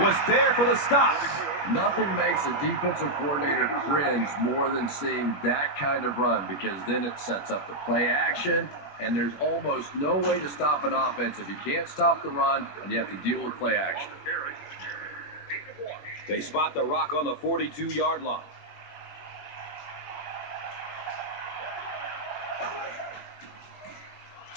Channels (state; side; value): late; right; 21 ms